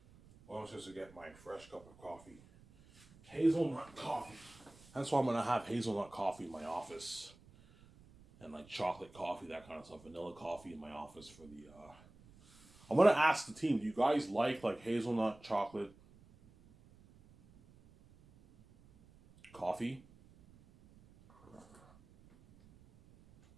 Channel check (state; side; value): noise; right; rumble, 24 dB below the sound